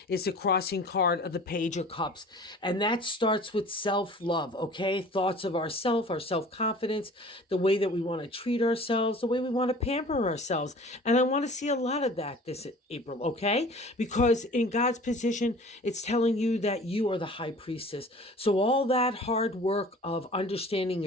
is the crossing card of the Page of Cups. And that starts with self-love, okay? Thoughts of ourself, our self-confidence, the way that we want to treat ourselves, the way we want to pamper ourselves. And I want to see a lot of that this April, okay? Because in God's position, it's telling you that you are the high priestess. So all that hard work of understanding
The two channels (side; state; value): both; normal; correlation 0.45